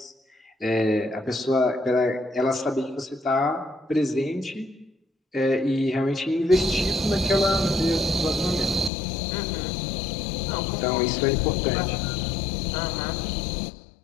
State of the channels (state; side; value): drops out; right; at 8.9 s